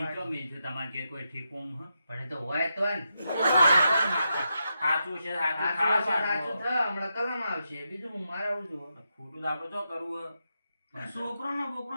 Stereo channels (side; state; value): both; inverted; correlation -0.85